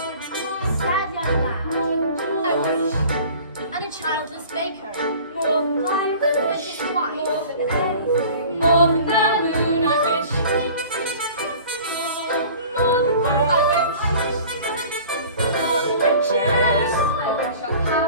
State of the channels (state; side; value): inverted; both; correlation -0.44